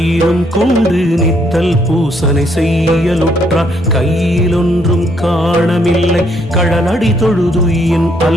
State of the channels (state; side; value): normal; both; correlation 0.70